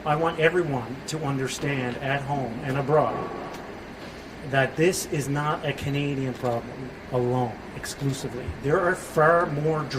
I want everyone to understand at home and abroad that this is not a Canadian problem alone, exclusively. There are far more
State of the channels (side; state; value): both; identical; correlation 1.00